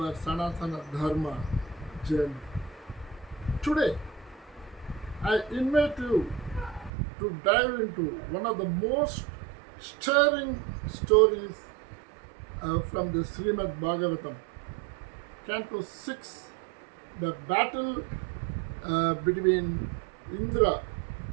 Sanatana Dharma journey. Today, I invite you to dive into one of the most stirring stories from the Srimad Bhagavatam, Canto 6, the battle between Indra,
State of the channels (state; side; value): drops out; left; at 6.9 s